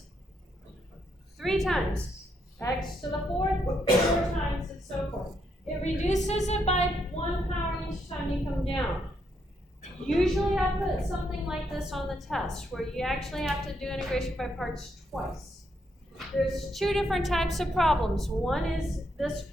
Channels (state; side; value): normal; both; correlation 0.77